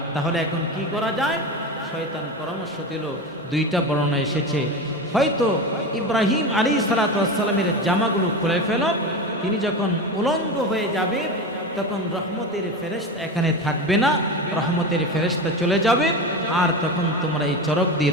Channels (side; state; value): both; normal; correlation 0.23